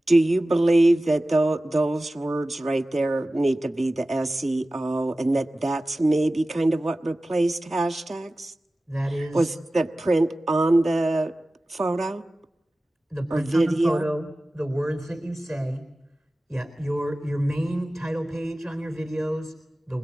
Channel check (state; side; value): normal; both; correlation 0.96